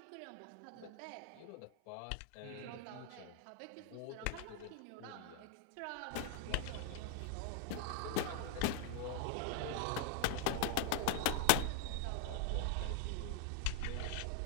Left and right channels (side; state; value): both; different; correlation 0.00